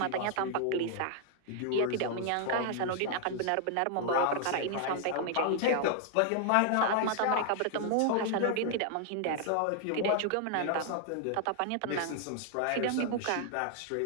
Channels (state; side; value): different; both; correlation 0.00